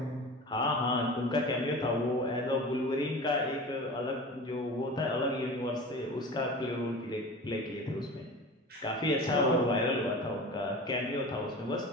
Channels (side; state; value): both; normal; correlation 0.34